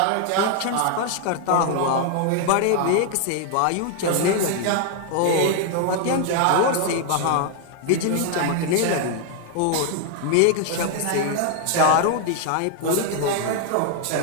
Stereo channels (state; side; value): different; both; correlation 0.00